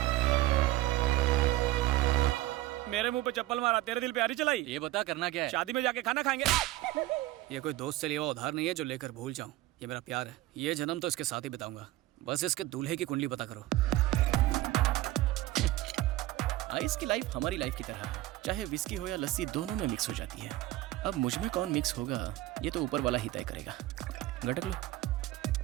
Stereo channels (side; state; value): left; quieter; 16.4 dB